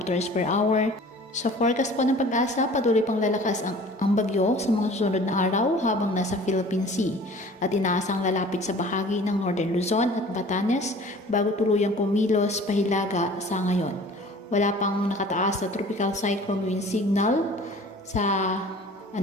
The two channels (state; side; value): normal; both; correlation 0.46